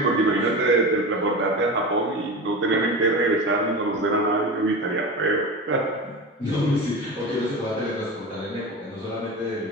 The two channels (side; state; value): both; normal; correlation 0.27